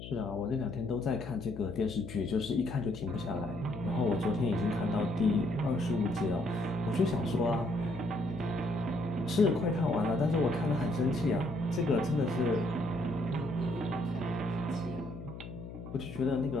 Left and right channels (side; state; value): left; noise; hum, 11 dB below the sound